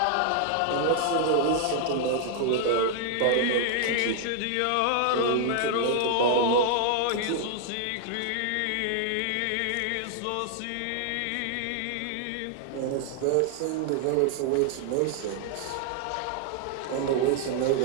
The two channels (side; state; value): both; different; correlation 0.00